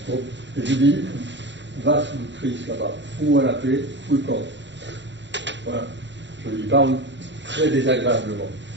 Bon. Et je dis, va sous le Christ là-bas, fous-moi la paix, fous le camp. Voilà. Je lui parle très désagréablement.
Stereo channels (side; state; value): left; late; 0.52 ms